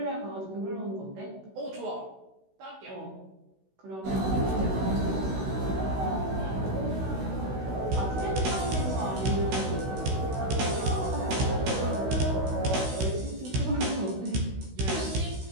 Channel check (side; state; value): left; late; 16 ms